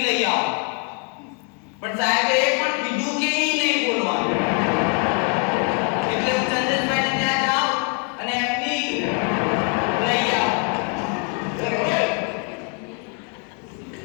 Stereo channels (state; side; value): quieter; right; 39.0 dB